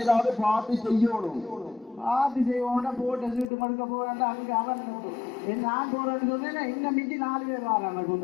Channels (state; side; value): drops out; right; at 3.5 s